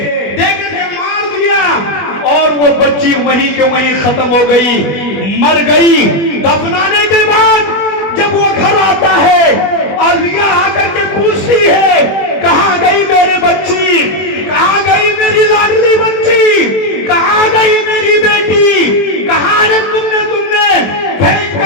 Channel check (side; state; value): right; late; 20 ms